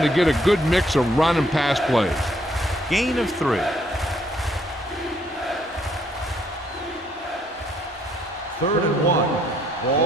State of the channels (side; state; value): both; normal; correlation 0.68